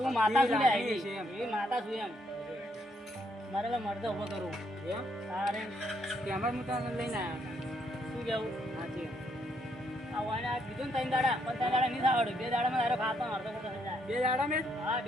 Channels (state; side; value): normal; both; correlation 0.73